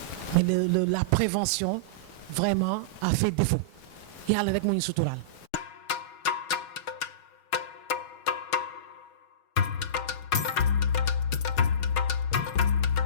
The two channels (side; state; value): right; late; 6.3 ms